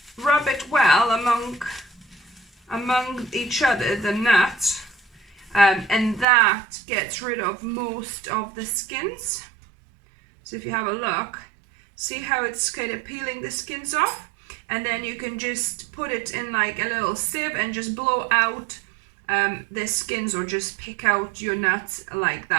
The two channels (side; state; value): left; drops out; at 6.2 s